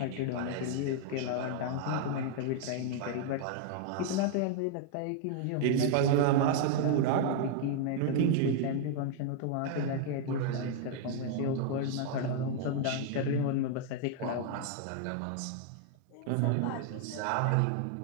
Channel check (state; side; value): different; both; correlation 0.00